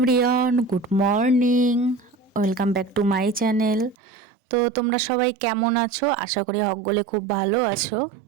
good morning, welcome back to my channel. তো তোমরা সবাই কেমন আছো? আশা করি সকলে খুব ভালো আছো।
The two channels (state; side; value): drops out; left; at 4.0 s